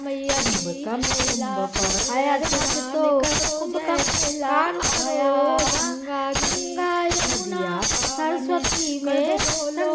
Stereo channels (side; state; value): both; identical; correlation 1.00